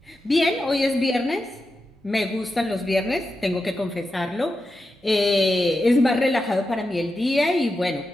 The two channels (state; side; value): normal; both; correlation 0.89